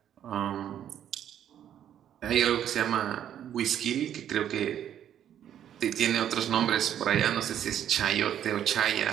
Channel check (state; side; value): quieter; left; 10.2 dB